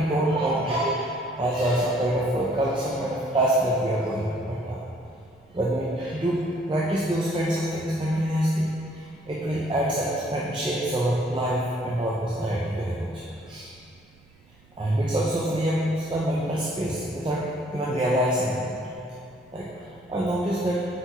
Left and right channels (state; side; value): noise; right; rumble, 29 dB below the sound